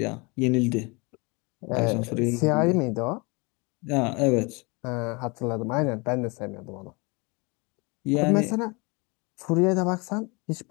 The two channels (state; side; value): quieter; right; 28.4 dB